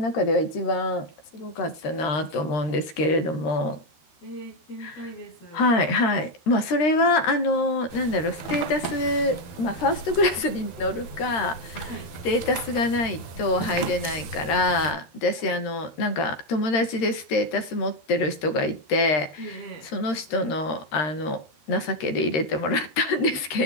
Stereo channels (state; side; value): late; right; 13 ms